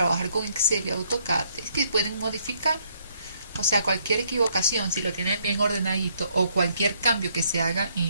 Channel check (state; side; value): inverted; both; correlation -0.69